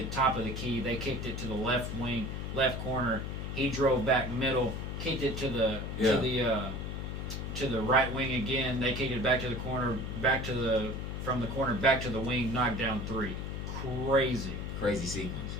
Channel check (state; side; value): noise; left; hum, 5 dB below the sound